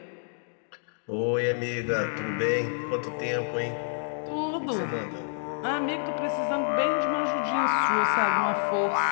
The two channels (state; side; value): silent; right; digital silence